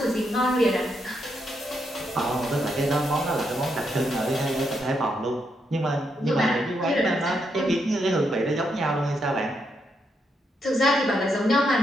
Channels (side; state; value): both; normal; correlation 0.80